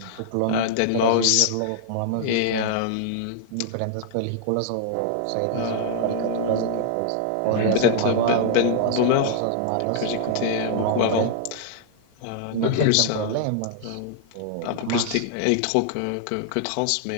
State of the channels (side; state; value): both; different; correlation -0.01